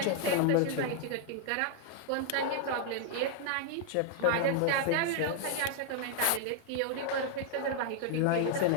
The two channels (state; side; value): different; both; correlation 0.00